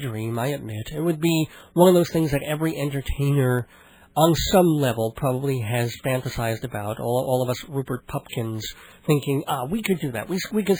I admit. It would be one of those things that every entertainer on some level probably has fantasized about, all of us Rupert Pupkins thinking, we could do that. We could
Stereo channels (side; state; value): both; identical; correlation 1.00